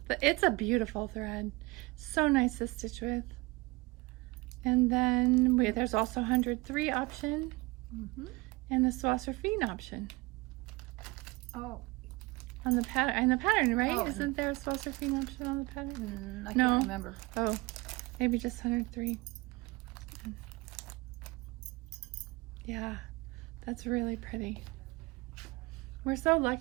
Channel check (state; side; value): quieter; left; 23.3 dB